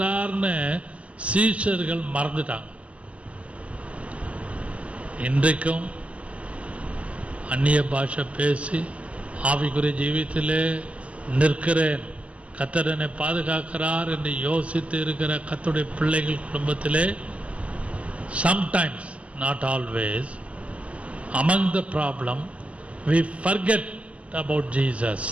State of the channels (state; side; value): late; left; 0.064 ms